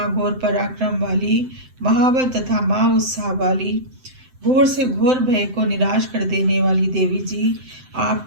पराक्रम वाली, महाबल तथा महा उत्साह वाली, घोर से घोर भय को निराश कर देने वाली देवी जी,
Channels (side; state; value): left; late; 7.8 ms